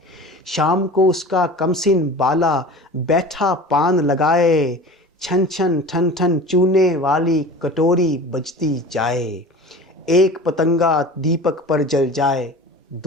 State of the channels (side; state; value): both; normal; correlation 0.37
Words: شام کو اس کا کمسن بالا بیٹھا پان لگائے، چھن چھن ٹھن ٹھن چونے والی کٹوری بجتی جائے، ایک پتنگا دیپک پر جل جائے